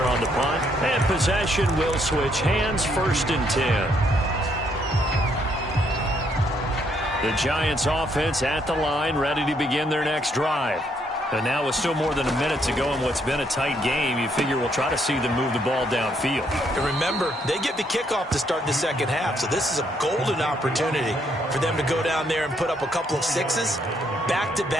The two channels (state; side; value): normal; both; correlation 0.72